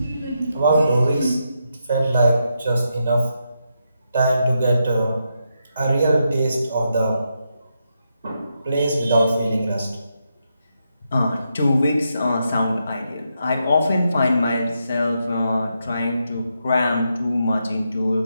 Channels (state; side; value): inverted; both; correlation -0.83